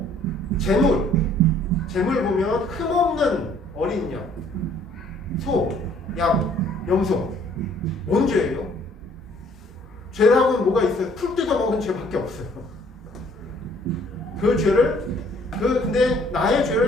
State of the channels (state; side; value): normal; both; correlation 0.60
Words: 재물 보면 흠없는 어린 양, 소, 양, 염소. 뭔 죄예요? 죄라고는 뭐가 있어요? 풀 뜯어먹은 죄밖에 없어요. 그 죄를 근데 나의